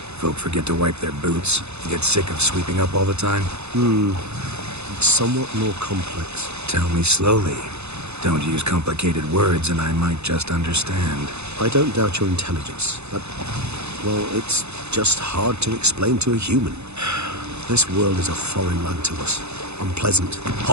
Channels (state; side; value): late; left; 0.81 ms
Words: Folk forget to wipe their boots, get sick of sweeping up all the time? It's somewhat more complex. Tell me slowly. Don't use complicated words and I might just understand. I don't doubt your intelligence, but, well, it's just hard to explain to a human. This world is a foreign land to us. Unpleasant,